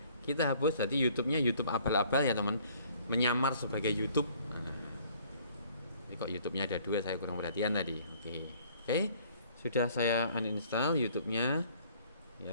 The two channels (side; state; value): both; inverted; correlation -0.58